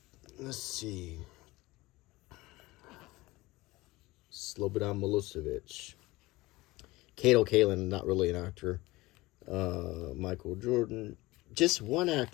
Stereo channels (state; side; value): quieter; right; 20.2 dB